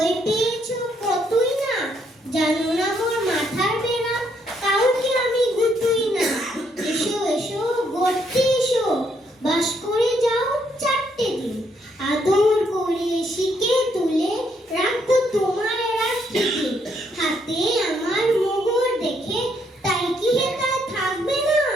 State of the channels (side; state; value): both; normal; correlation 0.73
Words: পেয়েছো কতই না। জানো না মোর মাথার বেড়া, কাউকে আমি গুতুই না। এসো এসো গড়তে এসো, বাস করে যাও 4টে দিন। আদর করে শিকে তুলে রাখবো তোমার রাত্রিতে। হাতে আমার মোগর দেখে তাই কি হেতায় থাকবে না?